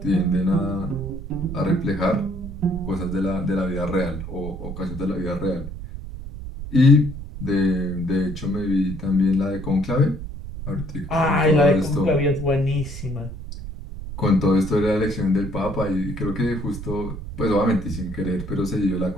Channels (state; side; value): noise; right; rumble, 9 dB below the sound